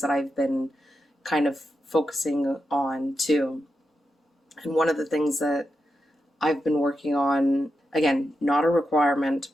that I've been kind of focusing on too. And one of the things that I've been working on, again, not a requirement,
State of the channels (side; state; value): both; normal; correlation 0.87